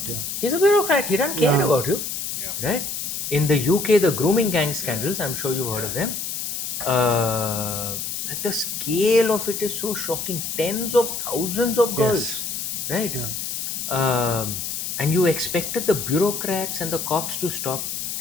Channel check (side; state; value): left; noise; hiss, 4 dB below the sound